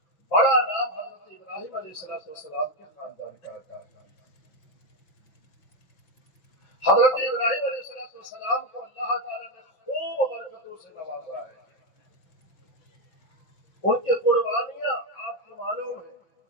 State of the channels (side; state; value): right; late; 5.9 ms